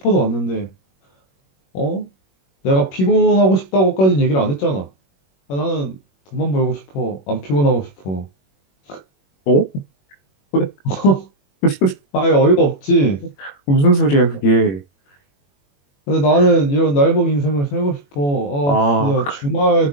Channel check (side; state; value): right; late; 21 ms